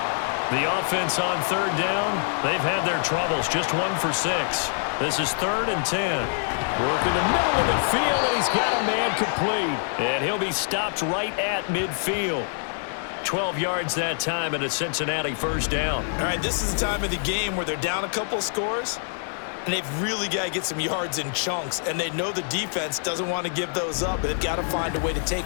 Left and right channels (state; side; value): silent; right; digital silence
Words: The offense on 3rd down, they've had their troubles. Just 1 for 6. This is 3rd and 10. Work in the middle of the field, and he's got a man complete. And he'll be stopped right at midfield. 12 yards that time, and a Cincinnati 1st down. All right, this is the time of the game where they're down a couple of scores, and they've really got to get some yards in chunks, and they know the defense doesn't want to give those up, but they've got to find a way to take